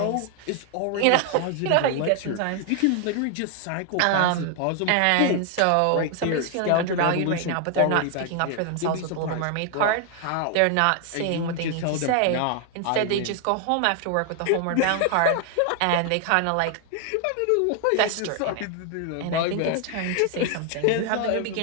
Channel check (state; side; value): different; both; correlation 0.00